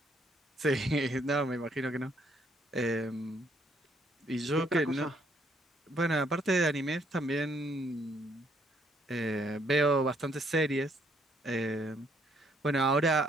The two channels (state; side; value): normal; both; correlation 0.69